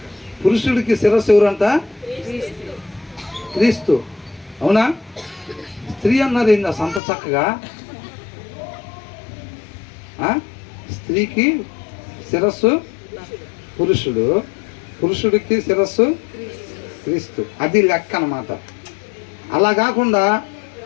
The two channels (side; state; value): right; drops out; at 7.0 s